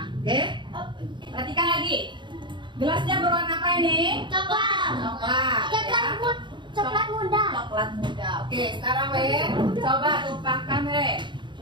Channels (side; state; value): left; late; 0.23 ms